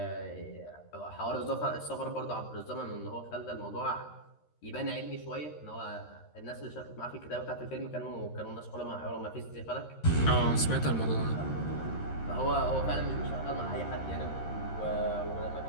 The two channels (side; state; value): right; late; 13 ms